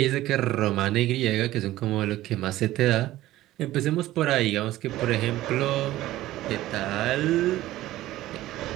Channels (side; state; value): left; quieter; 15.6 dB